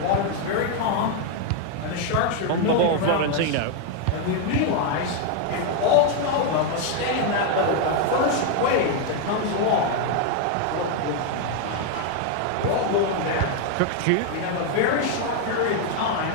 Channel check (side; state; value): both; different; correlation 0.01